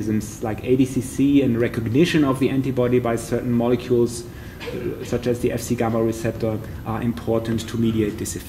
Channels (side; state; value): both; identical; correlation 1.00